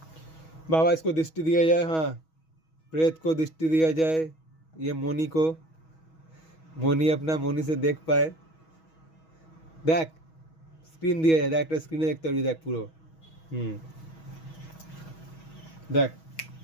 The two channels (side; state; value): right; late; 6.2 ms